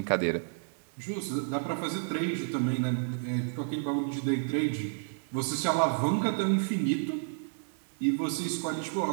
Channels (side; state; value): left; silent; digital silence